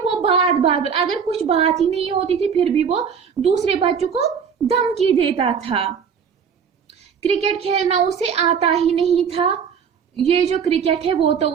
वो बात बात पर अगर कुछ बात ही नहीं होती थी फिर भी वो दूसरे बच्चों को धमकी देता था. क्रिकेट खेलना उसे आता ही नहीं था. ये जो क्रिकेट है वो तो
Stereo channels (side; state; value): left; quieter; 6.8 dB